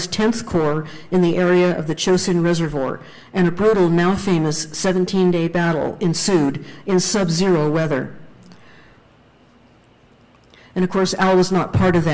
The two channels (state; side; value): identical; both; correlation 1.00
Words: 10th Corps in the area of the Chosin Reservoir, and a brutal, now famous 17-day battle ensued in sub-zero weather. And of course, Al was not part of